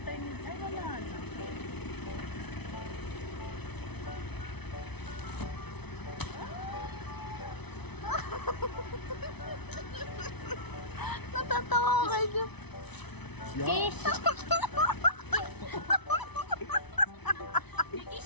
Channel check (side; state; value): right; late; 0.99 ms